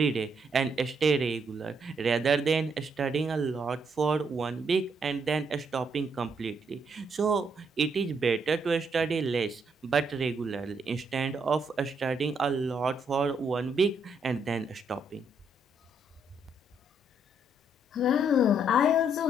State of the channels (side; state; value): both; normal; correlation 0.73